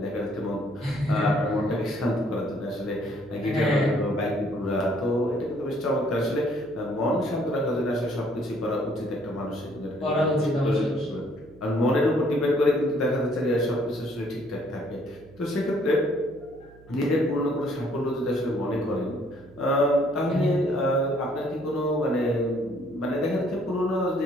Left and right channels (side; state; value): right; noise; hum, 24 dB below the sound